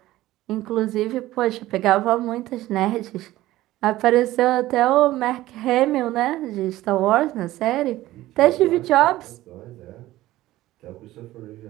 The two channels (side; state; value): left; quieter; 16.1 dB